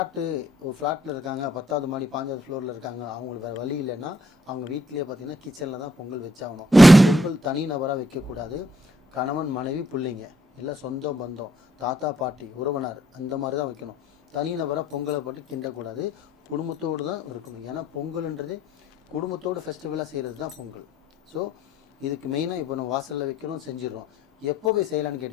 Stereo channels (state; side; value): normal; both; correlation 0.69